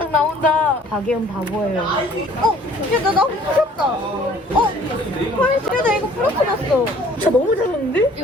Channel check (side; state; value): both; normal; correlation 0.54